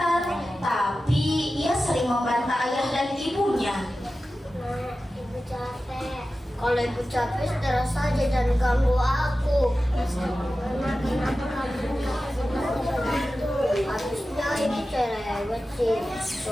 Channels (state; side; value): normal; both; correlation 0.94